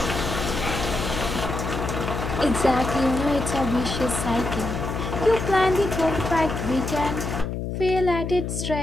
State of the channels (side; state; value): left; noise; hum, 4 dB below the sound